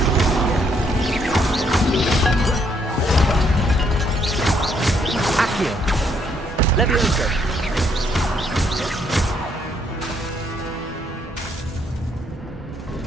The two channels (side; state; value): both; normal; correlation 0.71